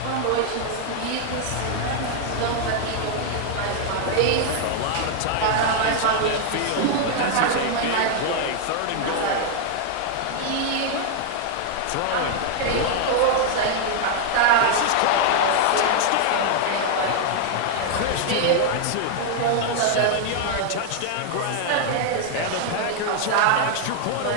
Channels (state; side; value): different; both; correlation 0.00